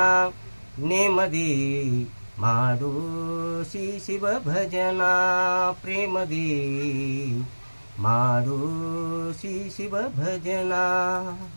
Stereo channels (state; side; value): inverted; both; correlation -1.00